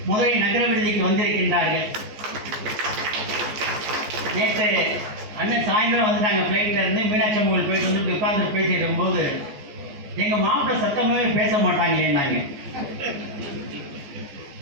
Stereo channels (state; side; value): late; left; 14 ms